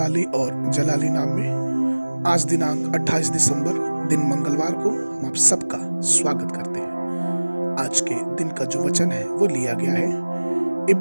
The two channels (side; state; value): both; inverted; correlation -1.00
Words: और जलाली नाम में आज दिनांक 28 दिसंबर दिन मंगलवार को हम आप सबका स्वागत करते हैं। आज के दिन का जो वचन है वो लिया गया है